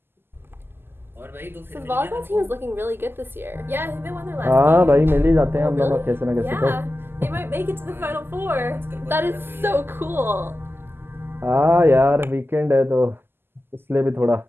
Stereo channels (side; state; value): left; late; 0.11 ms